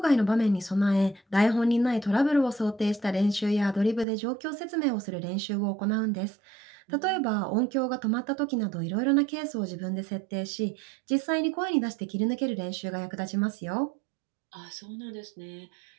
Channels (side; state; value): left; drops out; at 4.0 s